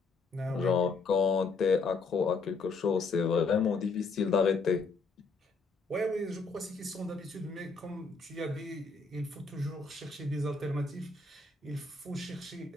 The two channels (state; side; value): quieter; right; 4.2 dB